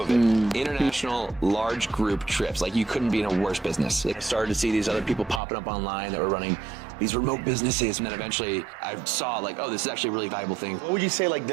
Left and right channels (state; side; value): drops out; left; at 5.4 s